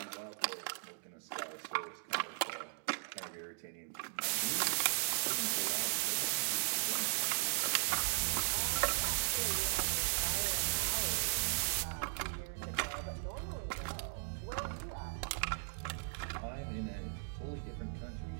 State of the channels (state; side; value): silent; left; digital silence